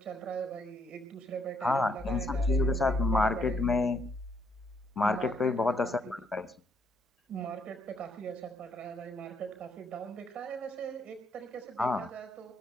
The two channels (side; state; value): both; normal; correlation 0.71